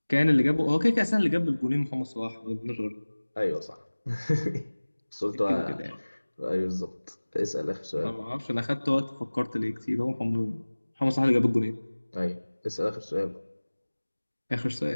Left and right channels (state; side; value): inverted; both; correlation -1.00